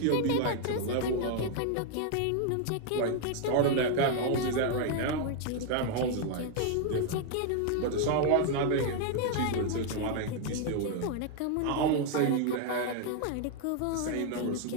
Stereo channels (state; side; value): different; both; correlation 0.00